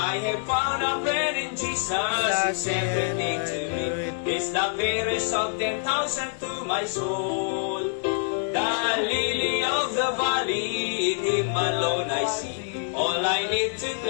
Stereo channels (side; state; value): right; silent; digital silence